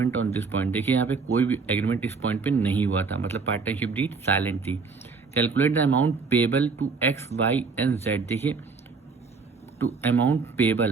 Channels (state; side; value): quieter; left; 4.7 dB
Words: on this point. देखिए यहाँ पे कोई भी एग्रीमेंट इस पॉइंट पे नहीं हुआ था, मतलब पार्टनरशिप डीड साइलेंट थी। Calculate the amount payable to X, Y and Z। देखिए टू अमाउंट